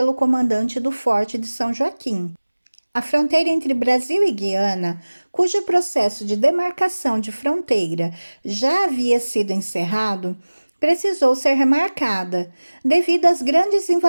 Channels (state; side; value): inverted; both; correlation -1.00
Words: comandante do Forte de São Joaquim. A fronteira entre Brasil e Guiana, cujo processo de demarcação de fronteira já havia sido encerrado, precisou ser remarcada, devido às grandes